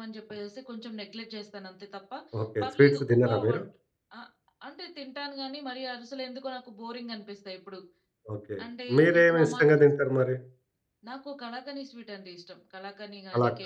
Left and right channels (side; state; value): both; identical; correlation 1.00